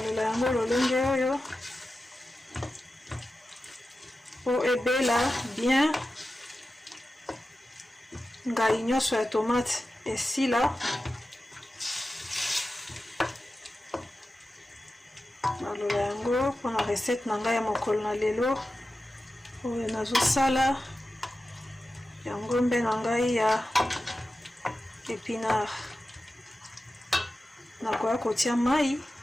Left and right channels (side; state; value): both; normal; correlation 0.93